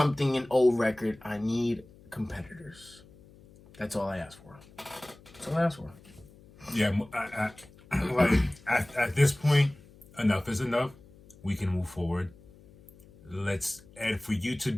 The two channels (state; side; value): noise; left; hum, 24 dB below the sound